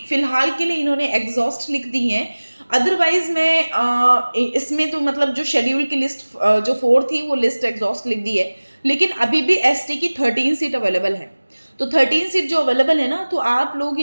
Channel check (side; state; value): both; inverted; correlation -1.00